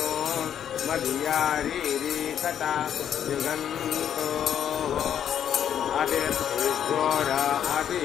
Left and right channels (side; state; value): right; quieter; 9.4 dB